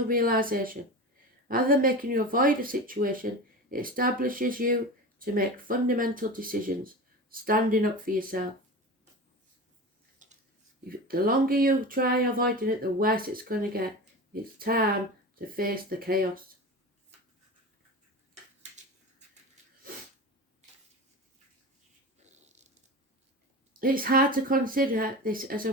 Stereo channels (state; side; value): normal; both; correlation 0.29